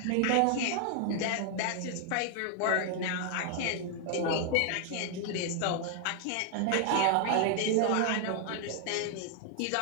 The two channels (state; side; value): different; both; correlation 0.00